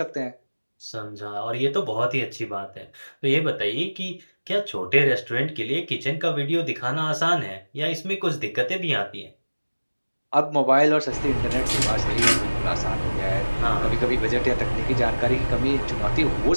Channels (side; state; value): both; inverted; correlation -1.00